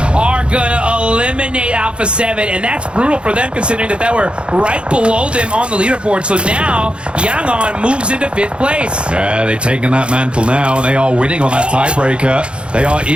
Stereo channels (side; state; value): left; late; 0.057 ms